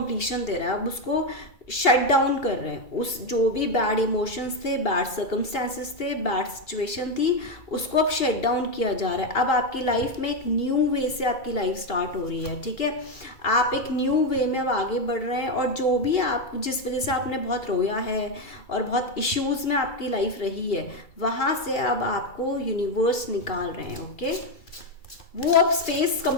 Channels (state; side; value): late; right; 2.3 ms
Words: दे रहा है, अब उसको शट डाउन कर रहे हैं। उस जो भी बैड इमोशंस थे, बैड सर्कमस्टेंसेस थे, बैड सिचुएशन थी, उसको अब शट डाउन किया जा रहा है। अब आपकी लाइफ में एक न्यू वे से आपकी लाइफ स्टार्ट हो रही है। ठीक है, आप एक न्यू वे में अब आगे बढ़ रहे हैं, और जो भी आप, जिस वजह से आपने बहुत रोया है और बहुत इश्यूज में आपकी लाइफ रही है, वहाँ से अब आपको यूनिवर्स निकाल रहे हैं। ओके, वो अब स्पेस